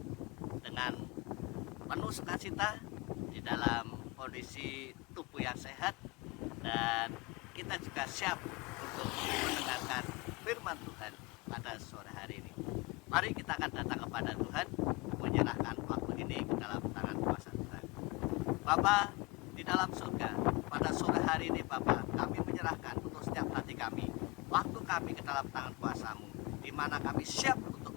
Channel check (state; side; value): quieter; right; 25.0 dB